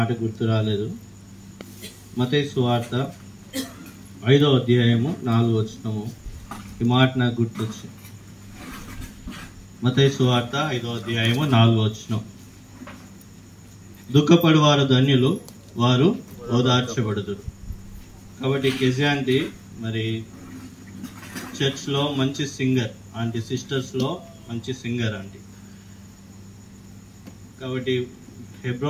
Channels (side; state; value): both; identical; correlation 1.00